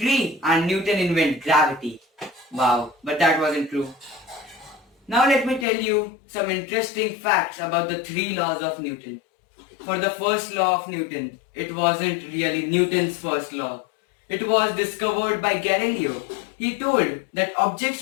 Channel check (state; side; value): drops out; right; at 5.7 s